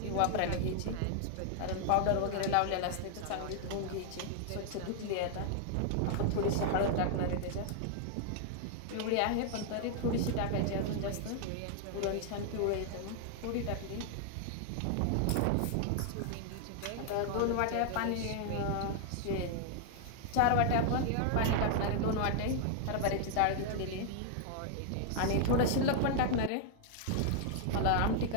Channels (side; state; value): both; different; correlation 0.00